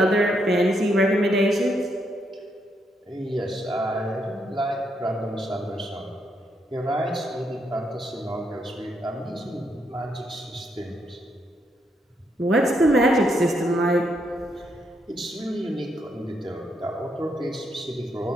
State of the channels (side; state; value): both; normal; correlation 0.77